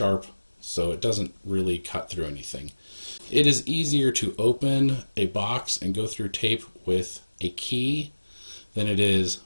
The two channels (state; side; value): inverted; both; correlation -1.00